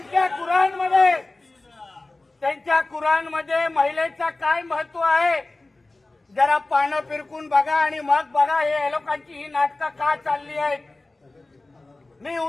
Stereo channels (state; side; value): quieter; right; 3.0 dB